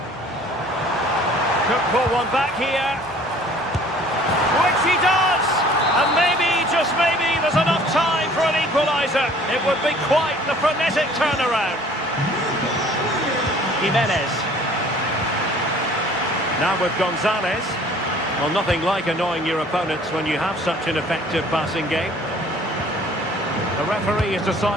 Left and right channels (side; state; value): both; normal; correlation 0.52